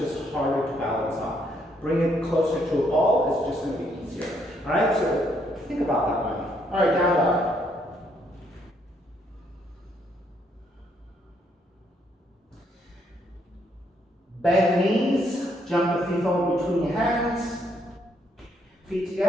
harder to balance on. Bring it closer to a ball, it's just going to be easier. All right, so think about that one. All right, down dog. Bend knees, jump the feet forward between your hands. Feet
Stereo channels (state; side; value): normal; both; correlation 0.72